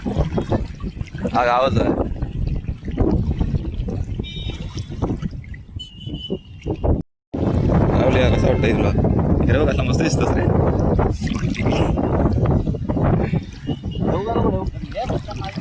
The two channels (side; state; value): both; identical; correlation 1.00